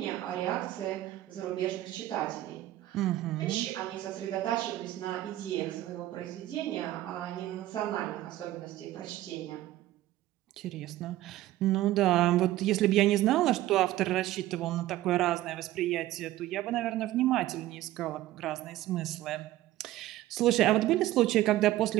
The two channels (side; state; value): left; quieter; 15.1 dB